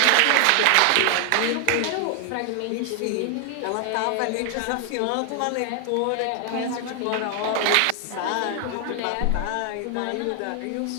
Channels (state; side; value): different; both; correlation 0.00